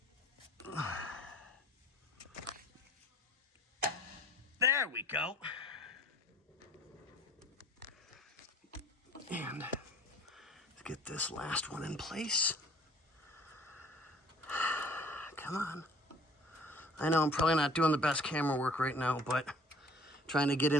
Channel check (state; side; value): normal; both; correlation 0.52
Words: There we go. And let's get this last one in place. Come on. I know I'm probably not doing the best camera work right now, but trying to get